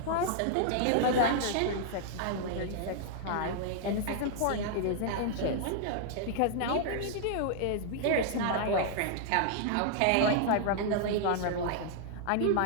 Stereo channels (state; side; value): different; both; correlation -0.01